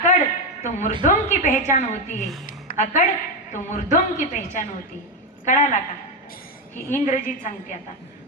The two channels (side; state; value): both; normal; correlation 0.10